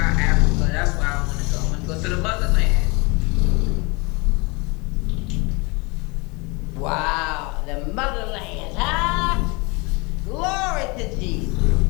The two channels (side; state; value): right; quieter; 27.7 dB